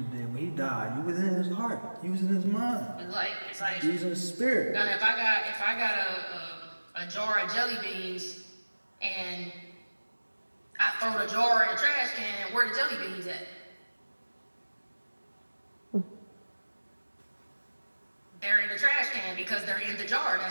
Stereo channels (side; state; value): both; inverted; correlation -1.00